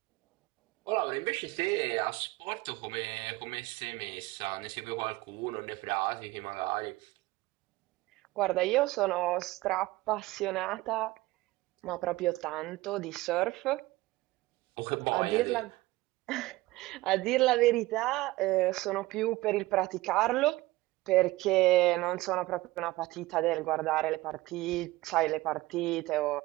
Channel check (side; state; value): left; quieter; 19.2 dB